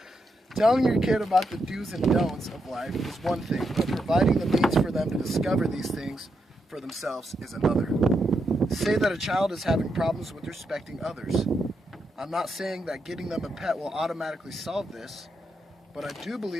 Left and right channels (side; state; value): both; normal; correlation 0.83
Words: Telling your kid about the do's and don'ts of life is one thing, but providing the means for them to discover these things for themselves is another. Say that a child is having problems with respecting others. I'm not saying that getting them a pet will automatically solve this, but I do